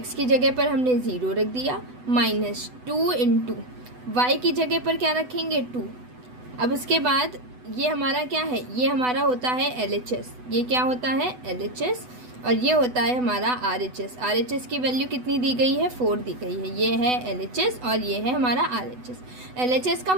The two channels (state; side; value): late; left; 8.0 ms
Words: की जगह पर हमने 0 रख दिया, -2 × y की जगह पर क्या रखेंगे 2। अब उसके बाद ये हमारा क्या है, ये हमारा होता है LHS। ये क्या होता है LHS और ये होता है हमारा RHS। RHS की वैल्यू कितनी दी गई है 4 दी गई है। ये है LHS और ये है हमारा RHS। LHS का